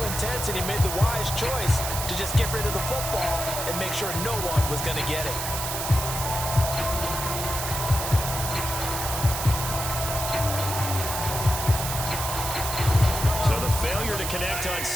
intense, and he made the wise choice to just get rid of the football and make sure no one was going to get it. Failure to connect on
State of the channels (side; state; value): right; noise; hiss, 4 dB below the sound